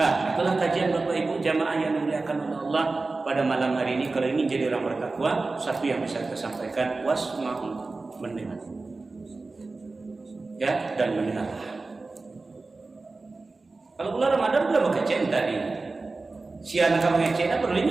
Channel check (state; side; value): quieter; left; 3.6 dB